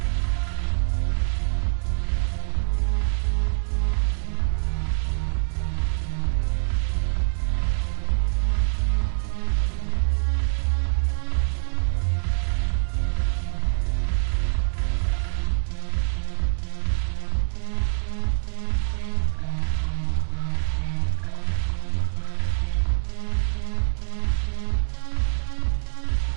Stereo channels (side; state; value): left; silent; 62 dB below the other